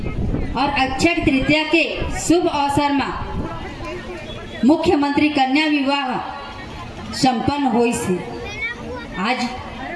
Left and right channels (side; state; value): both; identical; correlation 1.00